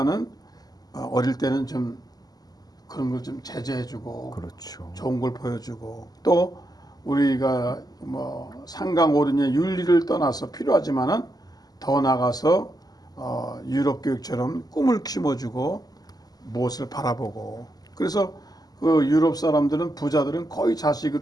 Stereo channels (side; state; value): right; late; 0.19 ms